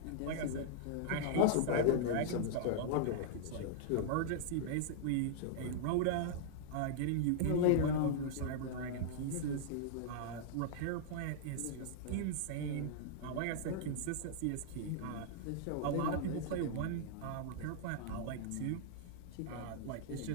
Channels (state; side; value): different; both; correlation -0.01